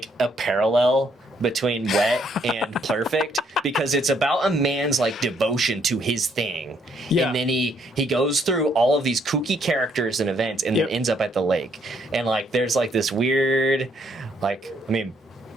a parallel between Wet and Perfect because it's about a man's like devotion to his thing. Yeah. And then he goes through all of these kooky characters and events and then ends up at the lake. And like there's like this weird like I mean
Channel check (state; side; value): normal; both; correlation 0.69